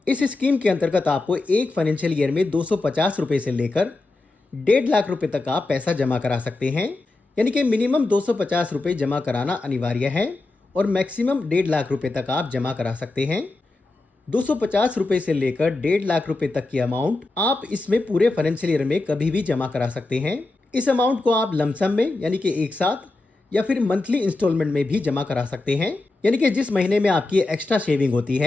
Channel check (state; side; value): quieter; right; 3.2 dB